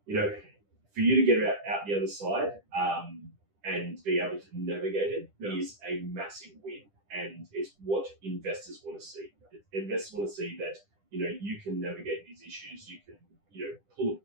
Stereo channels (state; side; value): late; left; 10 ms